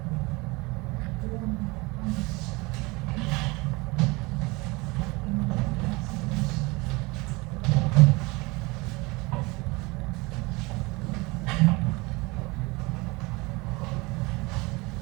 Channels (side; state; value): left; quieter; 24.6 dB